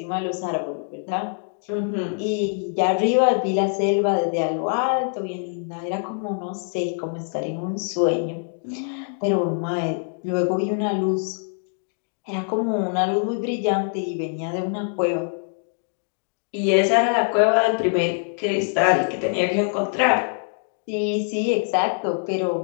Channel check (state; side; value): silent; right; 63 dB below the other